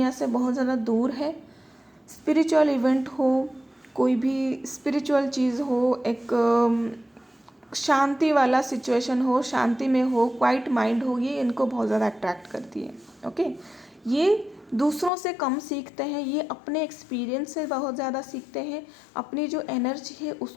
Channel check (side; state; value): right; drops out; at 15.1 s